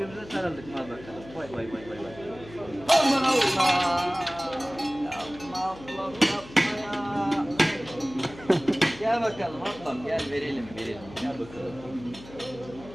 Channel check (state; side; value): noise; left; hum, 18 dB below the sound